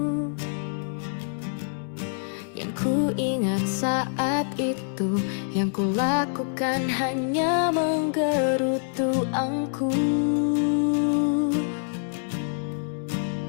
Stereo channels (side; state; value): right; silent; 61 dB below the other